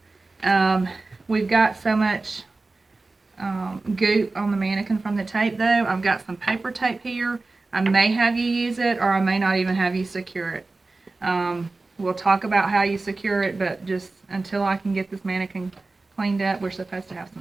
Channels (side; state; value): left; quieter; 3.4 dB